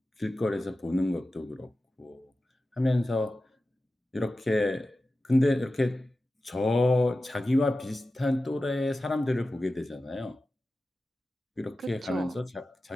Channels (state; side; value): normal; both; correlation 0.94